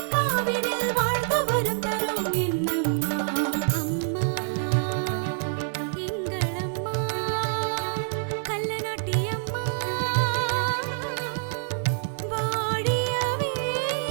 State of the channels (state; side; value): silent; left; 60 dB below the other